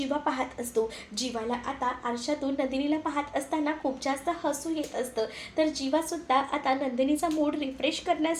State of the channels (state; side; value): identical; both; correlation 1.00